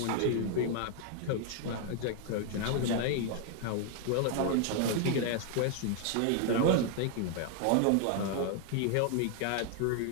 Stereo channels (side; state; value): both; different; correlation 0.00